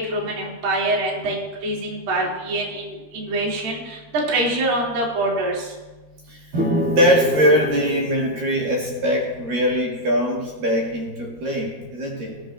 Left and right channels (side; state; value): left; late; 13 ms